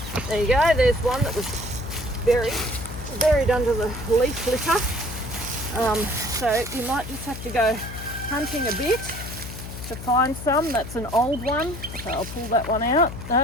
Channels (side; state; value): left; noise; hum, 10 dB below the sound